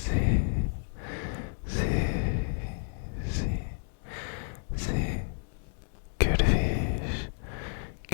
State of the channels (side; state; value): right; silent; 57 dB below the other